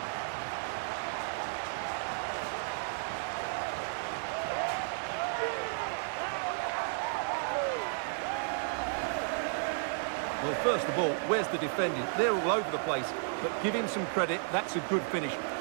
Well, first of all, where's the defending? They're all over the place. But give him some credit. That's a good finish.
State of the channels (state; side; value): silent; left; digital silence